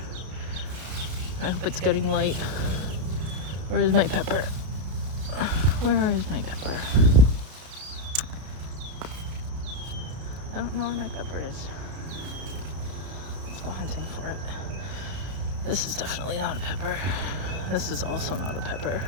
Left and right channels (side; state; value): left; late; 32 ms